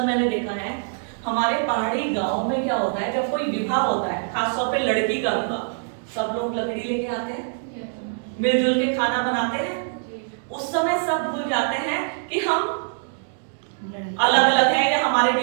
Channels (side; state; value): left; silent; digital silence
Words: मैंने देखा है हमारे पहाड़ी गांव में क्या होता है, जब कोई विवाह होता है, खासतौर पे लड़की का विवाह, सब लोग लकड़ी लेके आते हैं, मिलजुल के खाना बनाते हैं। उस समय सब भूल जाते हैं कि हम अलग अलग हैं या हमारे